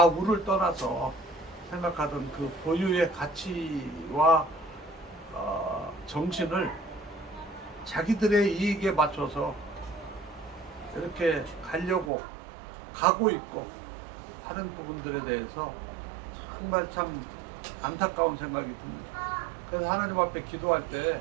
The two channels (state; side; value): drops out; left; at 12.1 s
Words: 떠나서 생각하던 그 고유의 가치와 정신을 자기들의 이익에 맞춰서 이렇게 가려고 가고 있고 하는 부분들에 대해서 정말 참 안타까운 생각이 듭니다. 그래서 하나님 앞에 기도할 때